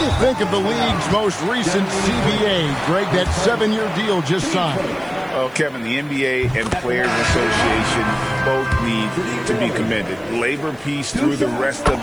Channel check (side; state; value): right; noise; hiss, 30 dB below the sound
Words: you think of the league's most recent CBA? Greg, that 7-year deal just signed. Well, Kevin, the NBA and Players Association both need to be commended. Labor peace through the rest of